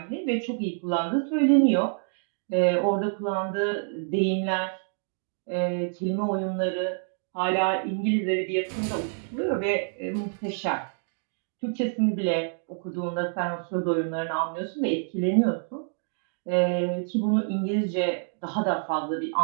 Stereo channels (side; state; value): left; silent; digital silence